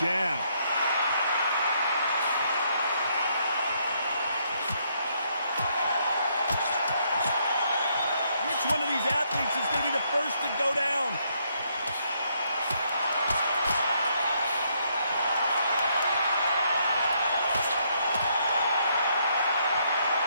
Which one of these athletes is going to be the first to go down?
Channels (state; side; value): inverted; both; correlation -0.73